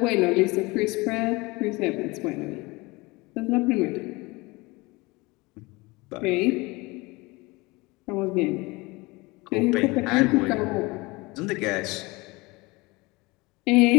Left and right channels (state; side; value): quieter; right; 23.8 dB